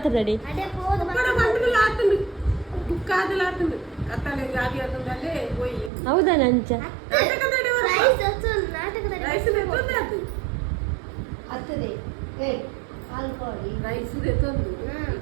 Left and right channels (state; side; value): drops out; left; at 5.9 s